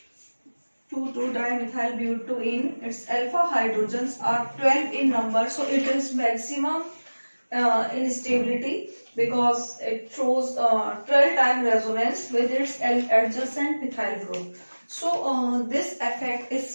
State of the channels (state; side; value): inverted; both; correlation -1.00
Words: 2,2-dimethyl butene. Its alpha hydrogens are 12 in number. So it is maximum in stability because it shows 12 time resonance with its adjacent methyl group. So this effect